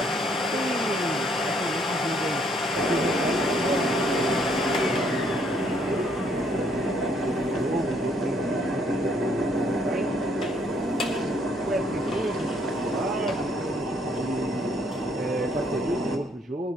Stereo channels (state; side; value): normal; both; correlation 0.67